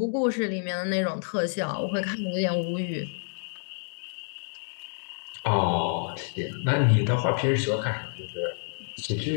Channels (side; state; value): right; silent; digital silence